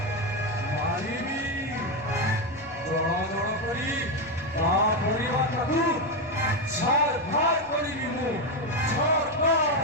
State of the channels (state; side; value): noise; right; rumble, 23 dB below the sound